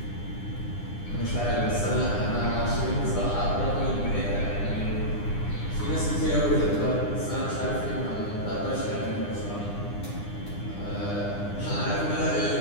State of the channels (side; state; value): right; late; 9.9 ms